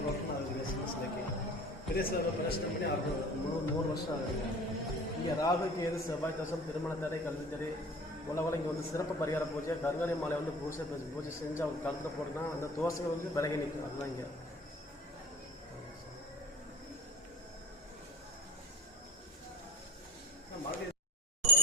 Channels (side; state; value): both; normal; correlation 0.43